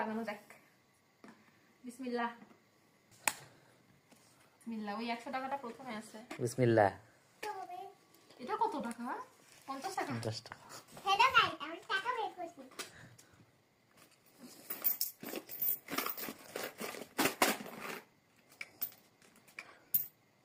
যাক। বিসমিল্লাহ বিসমিল্লাহ। ওই 100 টাকাটা প্রথমে আছে। বিসমিল্লাহ। এটা কত টাকা? 50 টাকা। 50 টাকা। হেডা খাই আমি টাকা বের করছি।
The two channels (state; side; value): identical; both; correlation 1.00